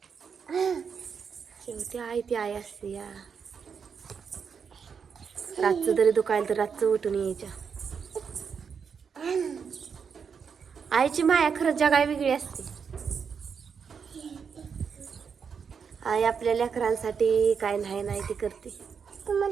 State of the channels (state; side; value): quieter; left; 6.4 dB